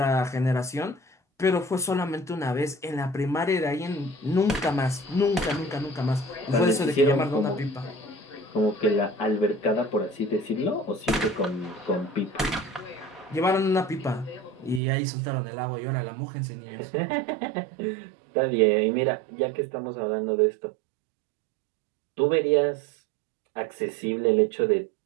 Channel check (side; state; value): left; drops out; at 14.8 s